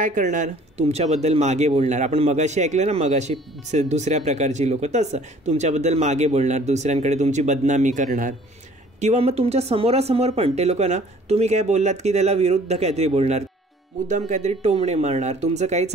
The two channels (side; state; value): both; normal; correlation 0.53